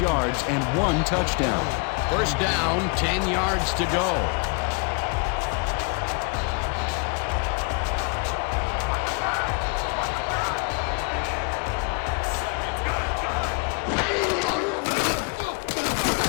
yards and 1 touchdown. First down, 10 yards to go.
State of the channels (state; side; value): quieter; right; 34.2 dB